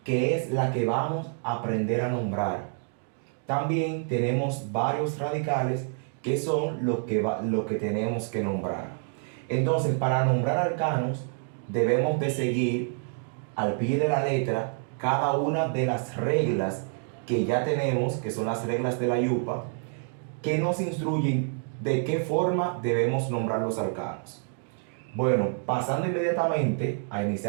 que es la que vamos a aprender a nombrar. También tenemos varios radicales que son lo que tenemos que nombrar. Entonces, para nombrar alcanos, debemos de seguir al pie de la letra cada una de las reglas que ya tenemos, que son las reglas de la yupa, que nos instruyen de qué forma debemos nombrar los alcanos. Bueno, pasando inmediatamente a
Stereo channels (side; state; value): left; silent; 60 dB below the other